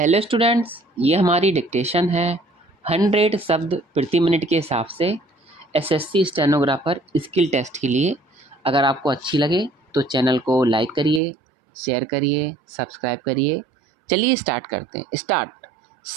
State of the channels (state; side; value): drops out; left; at 11.2 s